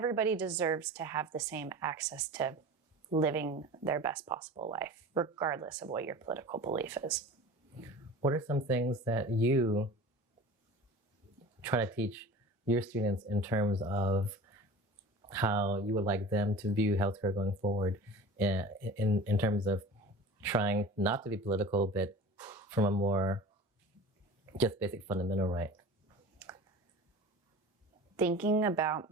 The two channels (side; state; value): both; normal; correlation 0.37